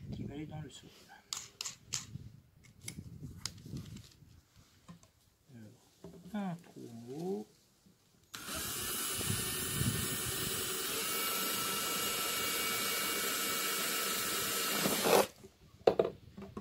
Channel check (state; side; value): identical; both; correlation 1.00